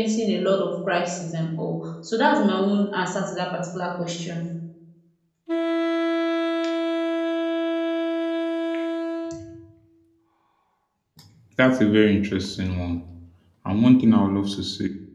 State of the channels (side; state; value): both; identical; correlation 1.00